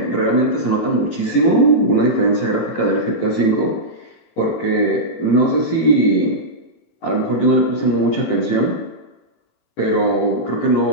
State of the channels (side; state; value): right; late; 18 ms